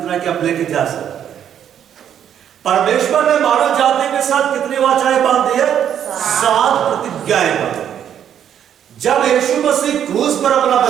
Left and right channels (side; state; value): left; quieter; 9.4 dB